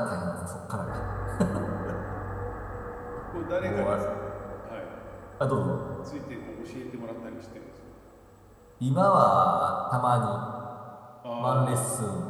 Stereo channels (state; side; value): identical; both; correlation 1.00